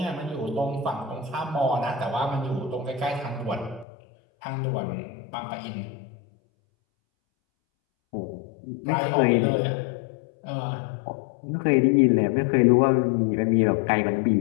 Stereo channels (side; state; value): right; drops out; at 3.9 s